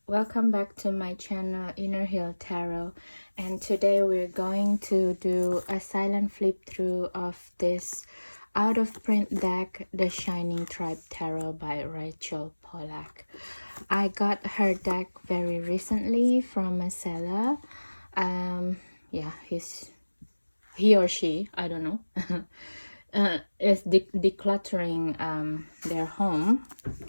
welcome back to my channel Inner Hill Tarot, and today we're going to do a silent flip through of this out of print deck, The Shining Tribe Tarot by Rachel Pollack. I got her deck very recently from a seller. Yeah, he or she, I don't know, is decluttering their home.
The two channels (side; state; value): both; inverted; correlation -1.00